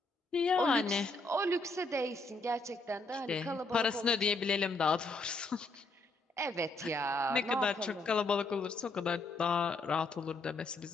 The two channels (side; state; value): right; quieter; 3.1 dB